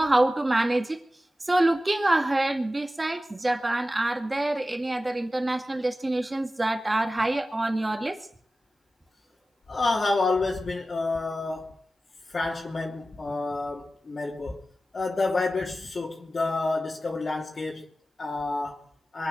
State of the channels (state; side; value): normal; both; correlation 0.94